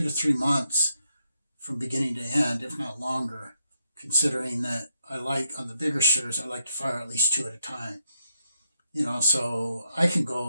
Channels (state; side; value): inverted; both; correlation -0.79